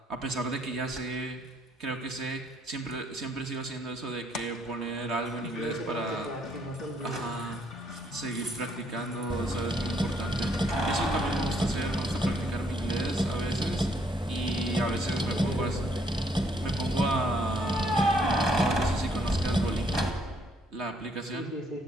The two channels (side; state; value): both; normal; correlation 0.69